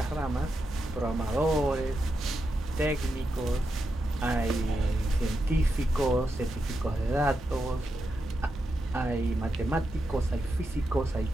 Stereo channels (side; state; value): both; normal; correlation 0.86